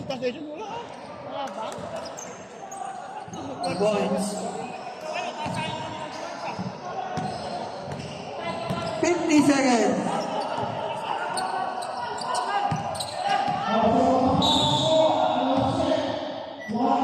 Tatay dyan? Wala. Wala ba? 2 points. 50 seconds.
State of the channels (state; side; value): identical; both; correlation 1.00